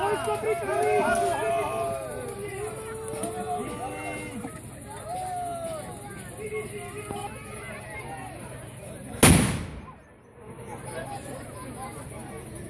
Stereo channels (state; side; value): identical; both; correlation 1.00